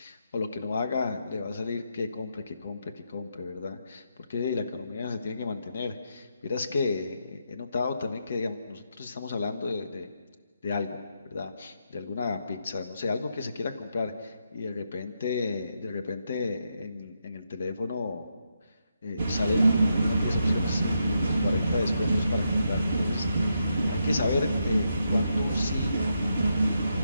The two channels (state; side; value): inverted; both; correlation -0.82